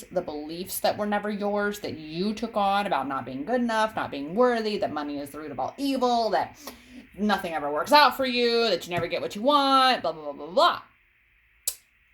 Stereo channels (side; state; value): both; identical; correlation 1.00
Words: the beliefs that were never yours, that you took on about not being good enough, not being worthy, that money is the root of all evil, that nothing ever works out for you, that you never get what you want, blah, blah, blah, blah, blah.